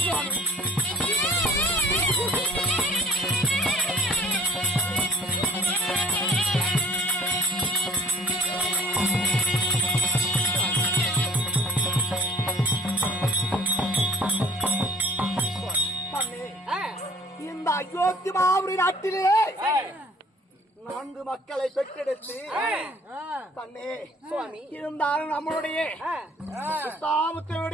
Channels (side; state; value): both; normal; correlation 0.51